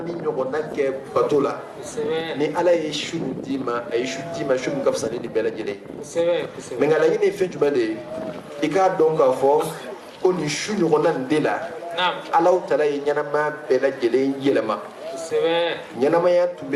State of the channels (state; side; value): identical; both; correlation 1.00